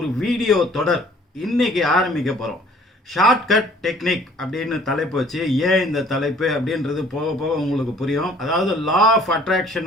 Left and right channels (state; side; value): normal; both; correlation 0.55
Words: வீடியோ தொடர் இன்னைக்கு ஆரம்பிக்க போகிறோம். ஷார்ட்கட் டெக்னிக் அப்படின்னு தலைப்பு வச்சு, ஏன் இந்த தலைப்பு அப்படின்றது போக போக உங்களுக்கு புரியும். அதாவது லா ஆஃப்